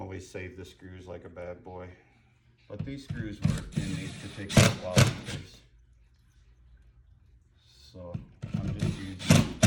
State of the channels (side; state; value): both; identical; correlation 1.00